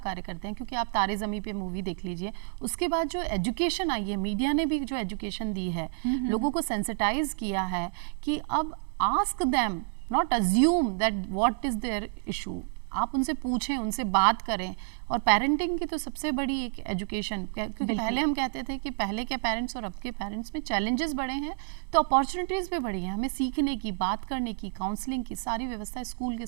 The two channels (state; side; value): silent; left; 58 dB below the other